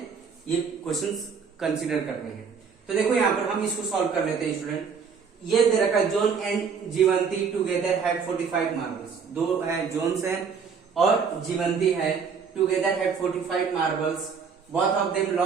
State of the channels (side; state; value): left; quieter; 6.0 dB